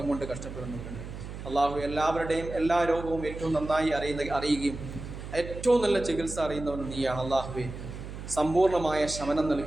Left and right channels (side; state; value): right; noise; hum, 10 dB below the sound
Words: കൊണ്ട് കഷ്ടപ്പെടുന്നവരുണ്ട്. അള്ളാഹു എല്ലാവരുടെയും എല്ലാ രോഗവും ഏറ്റവും നന്നായി അറിയുകയും ഏറ്റവും നല്ല ചികിത്സ അറിയുന്നവൻ നീയാണ്. അള്ളാഹുവെ, സമ്പൂർണ്ണമായ ശമനം